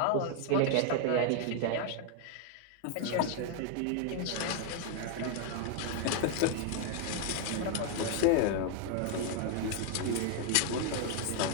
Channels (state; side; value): different; both; correlation 0.00